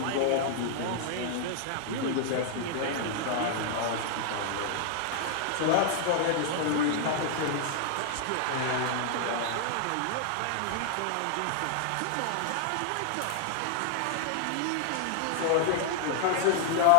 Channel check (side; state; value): both; different; correlation 0.00